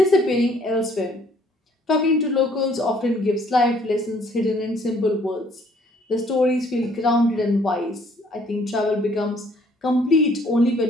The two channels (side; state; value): both; normal; correlation 0.62